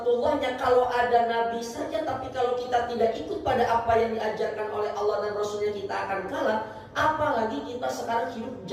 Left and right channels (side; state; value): both; identical; correlation 1.00